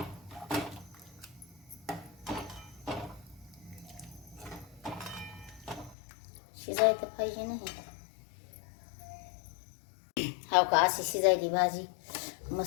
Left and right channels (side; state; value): right; drops out; at 6.0 s